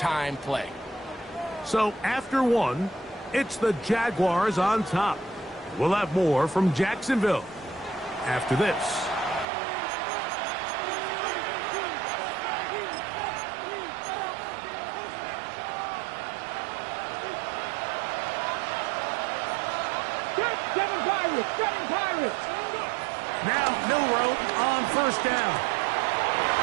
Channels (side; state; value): left; drops out; at 9.5 s